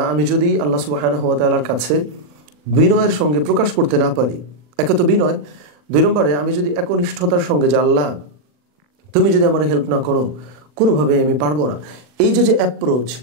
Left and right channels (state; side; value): late; left; 40 ms